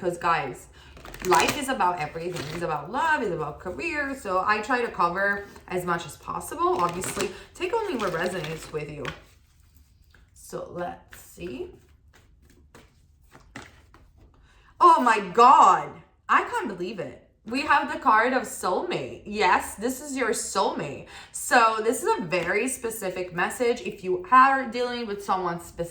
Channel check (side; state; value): both; identical; correlation 1.00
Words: guys, life is about everything. It's about love, it's about career. So I try to cover as much as possible. Obviously, take only what resonates with you. So let's see. Oh my God. I can't believe it. We have the card of soulmate. Yes, this is your soulmate. So this is a very specific message. If you are dealing with someone